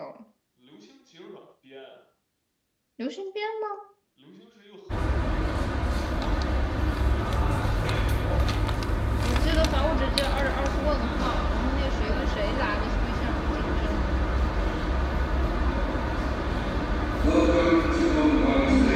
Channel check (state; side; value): identical; both; correlation 1.00